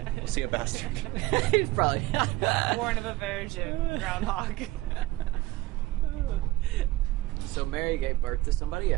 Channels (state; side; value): quieter; left; 18.4 dB